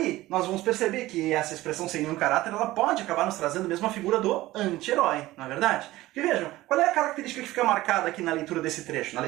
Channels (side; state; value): left; quieter; 17.3 dB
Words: nós vamos perceber que essa expressão sem nenhum caráter ela pode acabar nos trazendo mesmo a figura do anti-herói, não é verdade? Porque vejam, qual é a característica que fica marcada aqui na leitura desse trecho, na